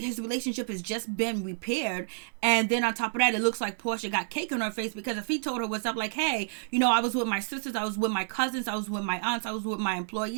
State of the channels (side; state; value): left; silent; digital silence